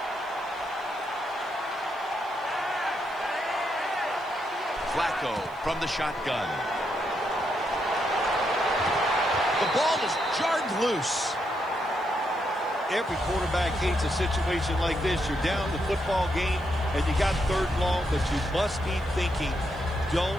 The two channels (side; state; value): right; noise; hiss, 29 dB below the sound